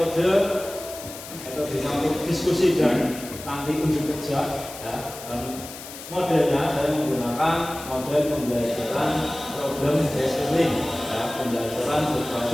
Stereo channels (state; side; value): noise; left; hiss, 13 dB below the sound